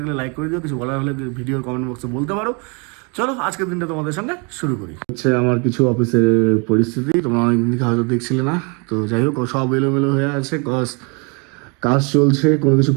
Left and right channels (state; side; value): quieter; left; 32.7 dB